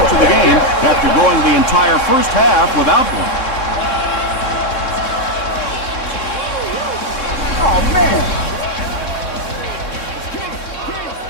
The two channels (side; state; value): right; late; 3.7 ms